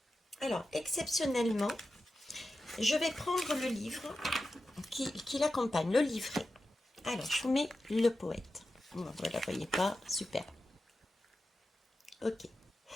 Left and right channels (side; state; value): both; normal; correlation 0.92